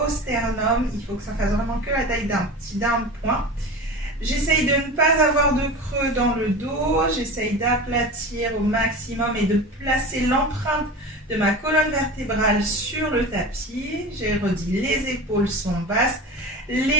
sternum. Il faut que ça fasse vraiment que la taille d'un point. J'essaye de ne pas avoir de creux dans le dos. J'essaye d'aplatir au maximum et de placer l'empreinte de ma colonne vertébrale sur le tapis. J'ai redit, les épaules sont basses.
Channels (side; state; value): both; normal; correlation 0.31